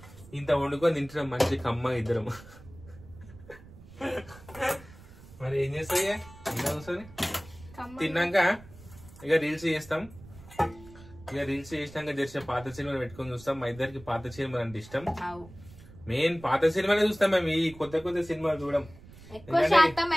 ఇంత వండుకొని తింటున్నాం మంచి కమ్మ ఇద్దరం. మరి ఏం చేస్తాయి ఇంట్లో కూర్చొని తిన్నాక ఇక రీల్స్ చేస్తాం. ఇక రీల్స్ చేసినాక జరిసే పాత సినిమాలు పెట్టుకొని చూస్తాం. మా ఇద్దరికి పాత సినిమాలు అంటే ఇష్టం. మెయిన్ పాత సినిమాలే చూస్తాం మేము. ఈ కొత్త సినిమాలు చూడం. ఎక్కువ శాతం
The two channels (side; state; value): right; noise; rumble, 20 dB below the sound